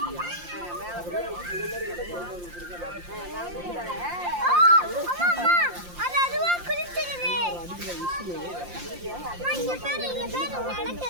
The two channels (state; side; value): late; left; 5.7 ms